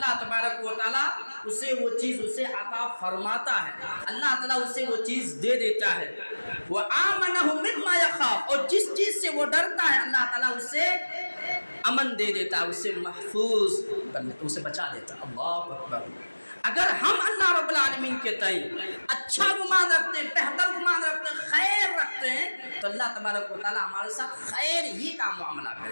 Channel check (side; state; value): both; inverted; correlation -1.00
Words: تبارک و تعالیٰ اسے وہ چیز اسے عطا فرماتا ہے، اللہ تعالیٰ اسے وہ چیز دے دیتا ہے۔ وآمنہ مما یخاف، اور جس چیز سے وہ ڈرتا ہے اللہ تعالیٰ اسے امن دے دیتا ہے، اسے محفوظ کر لیتا ہے، اسے بچا دیتا ہے۔ اللہ اکبر۔ اگر ہم اللہ رب العالمین کے تئیں اچھا گمان رکھتے ہیں، بہتر گمان رکھتے ہیں، خیر رکھتے ہیں تو اللہ تبارک و تعالیٰ ہمارے ساتھ خیر ہی کا معاملہ